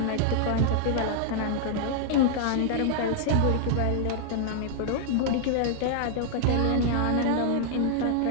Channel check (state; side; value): different; both; correlation 0.00